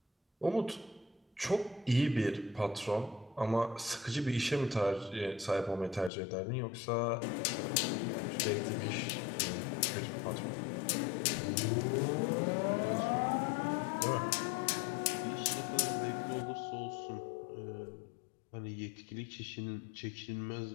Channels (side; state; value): right; drops out; at 6.1 s